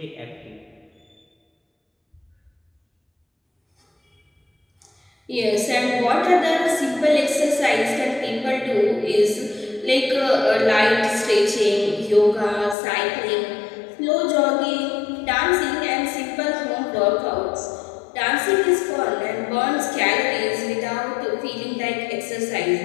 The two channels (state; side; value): drops out; right; at 12.8 s